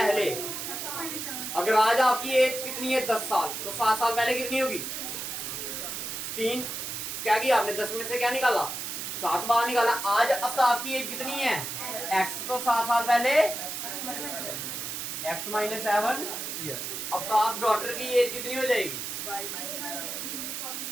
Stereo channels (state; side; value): noise; right; hiss, 5 dB below the sound